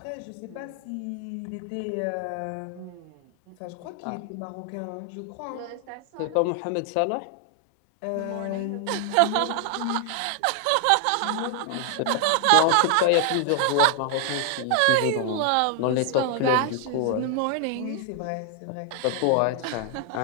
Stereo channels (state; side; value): different; both; correlation 0.00